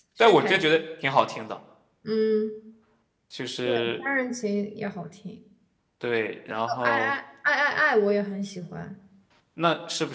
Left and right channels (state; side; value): identical; both; correlation 1.00